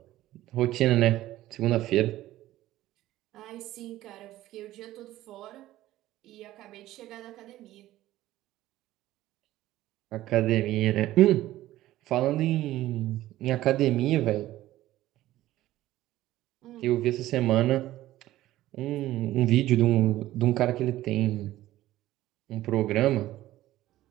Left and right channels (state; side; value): quieter; left; 15.2 dB